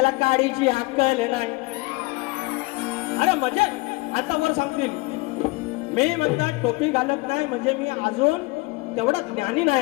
काडीची अक्कल नाही. अरे म्हणजे आता मला सांगतील, मी म्हणतात टोपी घालत नाही म्हणजे मी अजून तेवढा ज्ञानी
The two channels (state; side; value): quieter; right; 24.8 dB